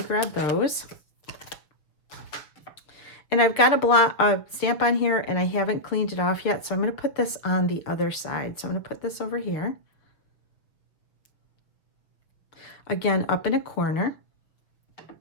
grab those. And I've got a stamp on here and I haven't cleaned it off yet, so I'm going to put this on the other side. So I'm going to put this over here, again up in a corner.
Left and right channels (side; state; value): right; late; 6.3 ms